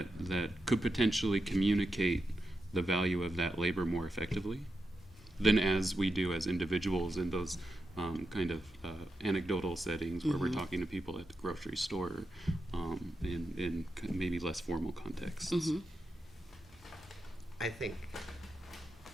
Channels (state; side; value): normal; both; correlation 0.88